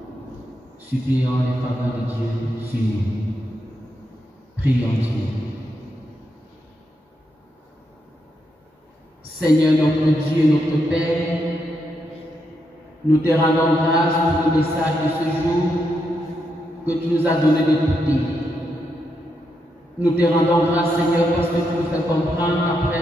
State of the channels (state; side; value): normal; both; correlation 0.82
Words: Supplions les faveurs de Dieu sur nous. Prions Dieu. Seigneur notre Dieu et notre Père, nous te rendons grâce pour le message de ce jour que tu nous as donné d'écouter. Nous te rendons grâce, Seigneur, parce que tu nous fais comprendre après